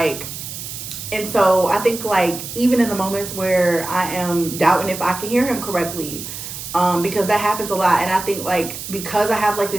and so I think like even in the moments where I am doubting if I can hear him correctly, because that happens a lot. And I think like because I have like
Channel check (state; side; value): noise; right; hiss, 9 dB below the sound